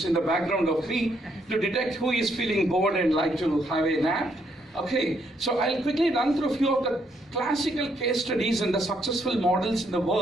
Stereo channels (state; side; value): normal; both; correlation 0.73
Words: in the background of me to detect who is feeling bored and like to have a nap. Okay, so I'll quickly run through a few of the classical case studies and the successful models in the